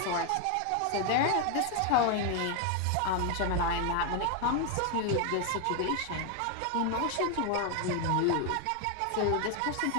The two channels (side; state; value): both; different; correlation 0.01